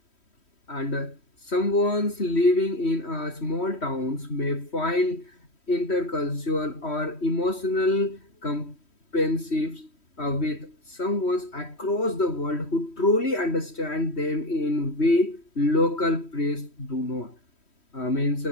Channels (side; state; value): right; late; 3.1 ms